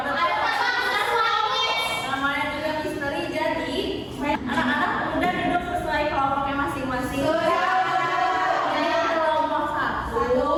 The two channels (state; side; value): identical; both; correlation 1.00